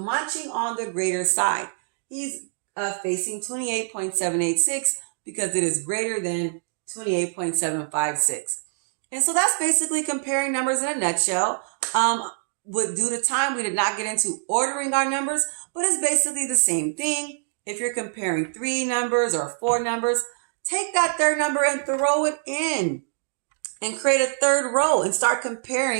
on the greater side. He's facing 28.786 because it is greater than 28.756. And so that's basically comparing numbers in a nutshell. Due to time, we did not get into ordering our numbers, but it's basically the same thing. If you're comparing 3 numbers or 4 numbers, take that third number and throw it in and create a third row and start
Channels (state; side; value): silent; left; digital silence